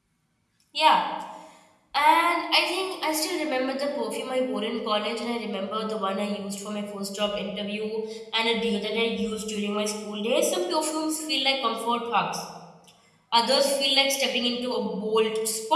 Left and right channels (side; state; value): both; identical; correlation 1.00